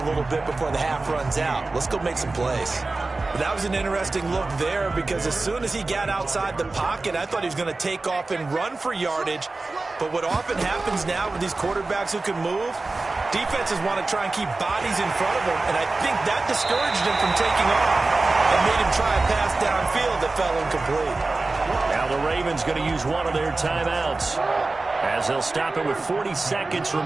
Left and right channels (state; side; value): quieter; left; 3.4 dB